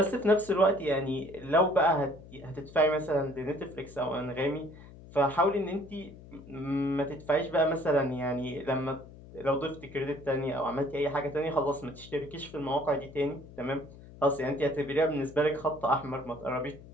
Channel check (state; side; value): noise; left; hum, 18 dB below the sound